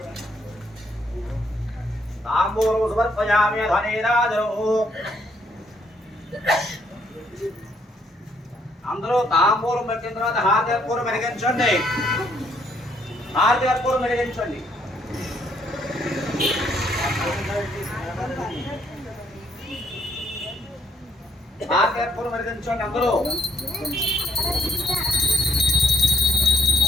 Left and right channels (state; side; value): normal; both; correlation 0.69